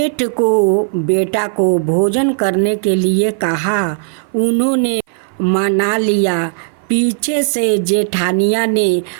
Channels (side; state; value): left; silent; 56 dB below the other